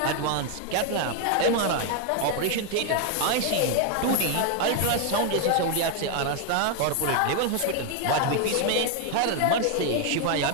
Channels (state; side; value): different; both; correlation 0.00